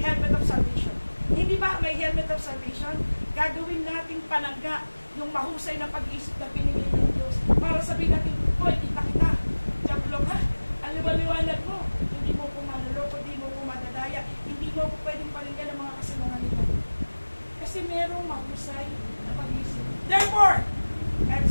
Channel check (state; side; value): inverted; both; correlation -1.00